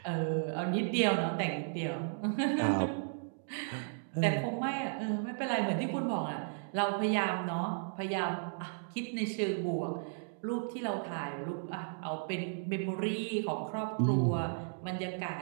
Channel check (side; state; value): left; silent; digital silence